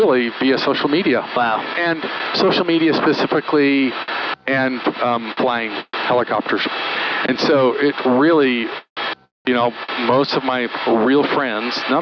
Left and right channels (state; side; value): identical; both; correlation 1.00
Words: via social media. Wow. And social media specifically, and flying helicopters. And so it really, you know, most of my real friends, not